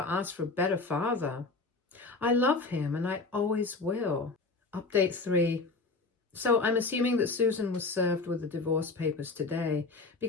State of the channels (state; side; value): quieter; right; 3.8 dB